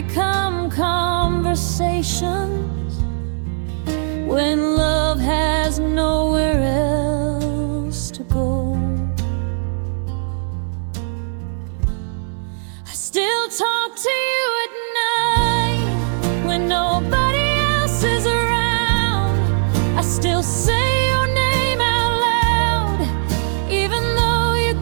conversations when love has nowhere else to go. I still talk to you at night when nobody else is around. I still say your name out loud, even though you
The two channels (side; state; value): left; silent; digital silence